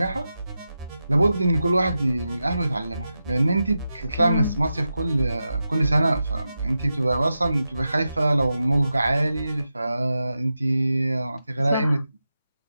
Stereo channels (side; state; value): both; inverted; correlation -0.90